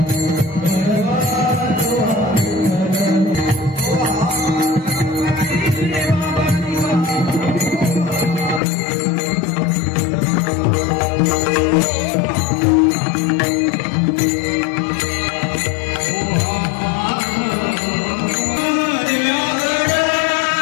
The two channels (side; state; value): right; drops out; at 8.6 s